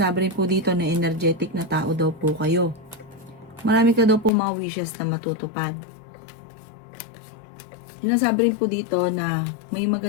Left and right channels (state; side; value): drops out; right; at 4.3 s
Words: rin po dito na energetic na tao daw po kayo. Marami ka daw po mga wishes na matutupad. Sinasabi rin po dito na may